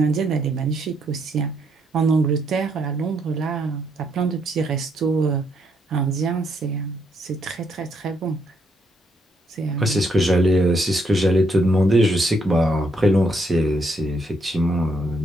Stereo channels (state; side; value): normal; both; correlation 0.74